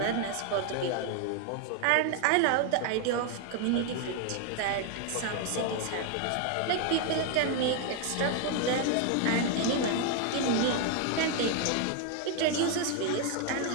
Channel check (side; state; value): both; different; correlation 0.01